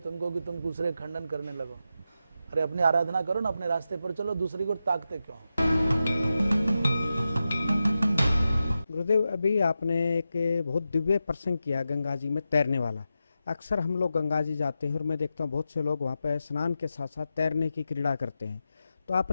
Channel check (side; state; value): both; inverted; correlation -0.90